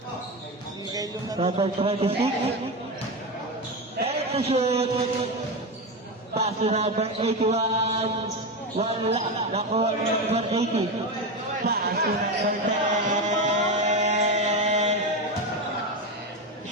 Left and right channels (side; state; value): both; normal; correlation 0.16